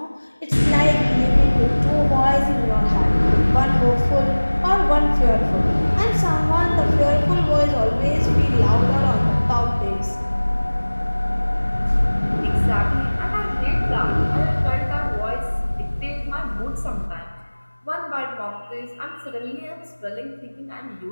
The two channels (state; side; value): inverted; both; correlation -1.00